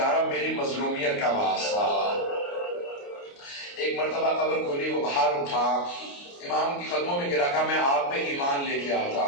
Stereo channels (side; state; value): right; late; 29 ms